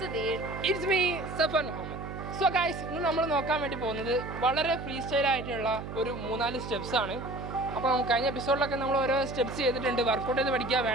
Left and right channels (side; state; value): right; noise; hum, 8 dB below the sound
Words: It's me, Safan Muhammad. So guys, ഇന്ന് നമ്മൾ നോക്കാൻ വേണ്ടി പോകുന്നത് വളരെ ഫ്രീ സ്റ്റൈൽ ആയിട്ടുള്ള ഒരു 3-4 സ്റ്റെപ്സ് ആണ്. അപ്പോൾ കഴിഞ്ഞ എപ്പിസോഡിലൊക്കെ നമ്മൾ ഓരോ സ്റ്റെപ്സ് ചെയ്തിട്ടുണ്ട്. വർക്കൗട്ട് ചെയ്ത് പഠിക്കാൻ